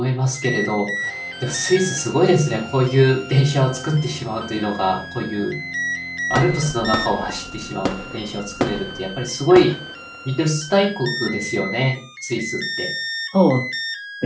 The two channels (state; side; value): identical; both; correlation 1.00